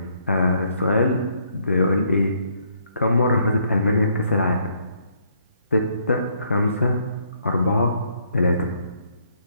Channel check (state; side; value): inverted; both; correlation -0.69